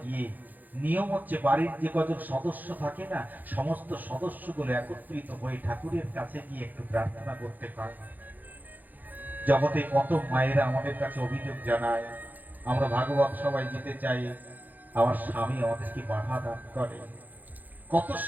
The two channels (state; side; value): late; left; 0.084 ms